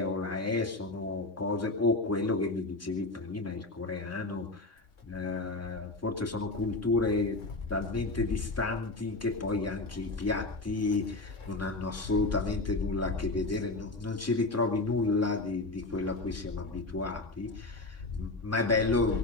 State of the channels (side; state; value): right; quieter; 3.1 dB